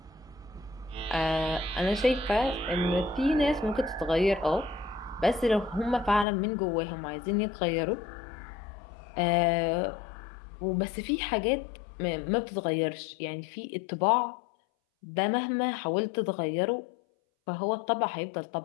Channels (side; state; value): right; drops out; at 6.2 s